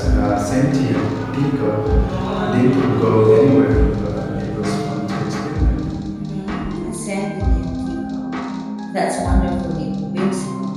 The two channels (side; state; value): both; identical; correlation 1.00